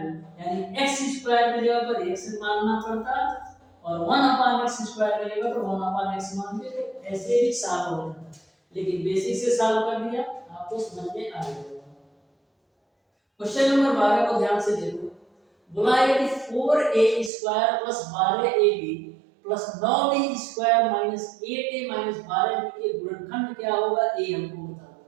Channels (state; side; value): drops out; left; at 17.3 s